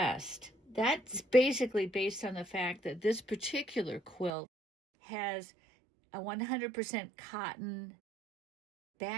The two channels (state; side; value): drops out; left; at 4.3 s